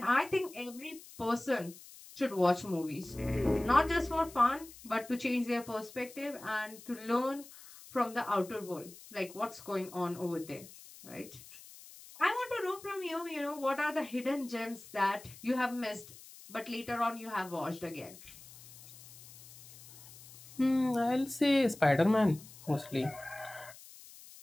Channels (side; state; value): left; noise; hiss, 19 dB below the sound